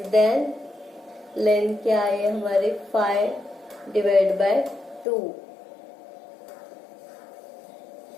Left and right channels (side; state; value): right; drops out; at 5.1 s